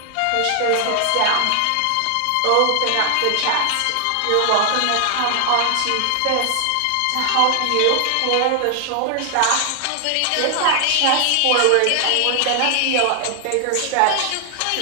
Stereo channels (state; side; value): different; both; correlation 0.00